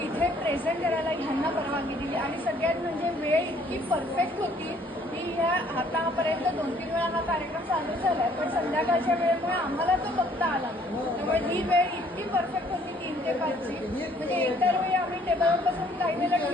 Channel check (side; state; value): both; normal; correlation 0.61